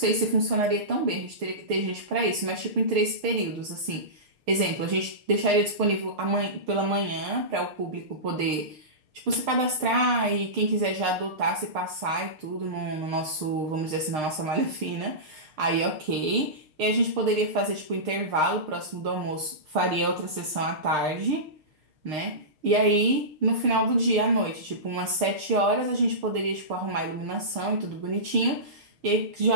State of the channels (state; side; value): late; left; 6.5 ms